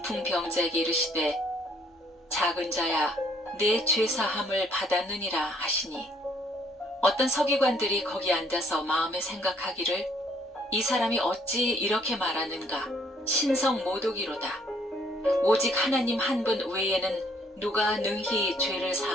이르시되 작은 자야 내 죄사함을 받았느니라 하시니 어떤 서기관들이 거기 앉아서 마음에 생각하기를 이 사람이 어찌 이렇게 말하는가 신성 모독이로다. 오직 하나님 한 분 외에는 누가 능히 죄를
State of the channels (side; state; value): both; normal; correlation 0.64